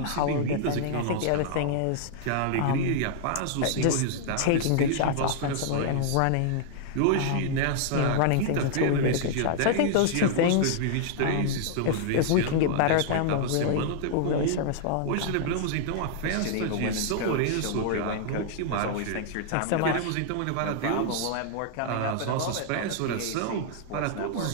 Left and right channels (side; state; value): both; different; correlation -0.01